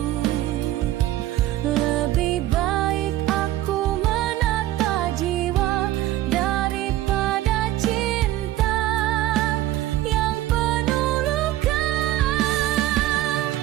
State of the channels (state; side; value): quieter; left; 14.6 dB